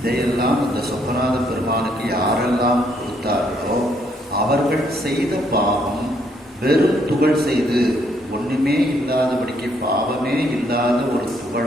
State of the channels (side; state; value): both; normal; correlation 0.70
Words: அந்த சொக்கநாத பெருமானுக்கு யாரெல்லாம் கொடுத்தார்களோ அவர்கள் செய்த பாவம் வெறும் துகள் செய்து ஒண்ணுமே இல்லாதபடிக்கு, பாவமே இல்லாத ஒரு